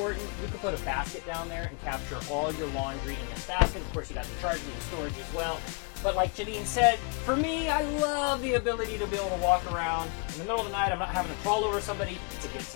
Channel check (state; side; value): quieter; right; 35.6 dB